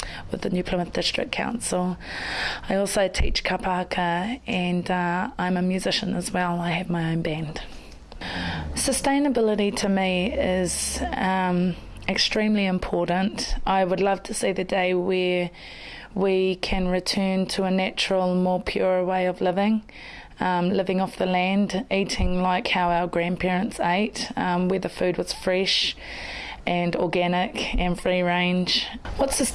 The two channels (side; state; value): both; identical; correlation 1.00